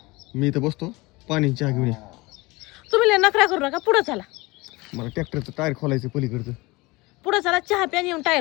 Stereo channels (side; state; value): right; quieter; 22.9 dB